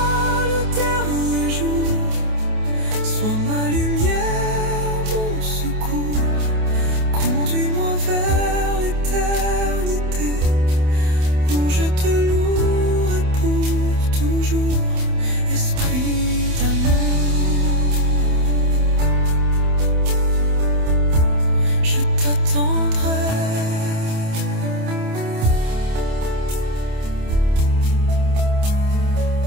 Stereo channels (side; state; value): left; late; 28 ms